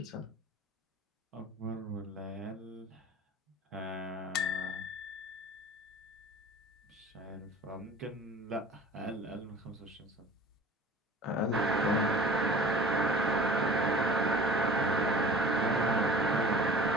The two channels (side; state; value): both; normal; correlation 0.43